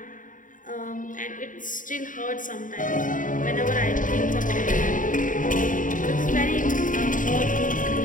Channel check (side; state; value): right; late; 0.38 ms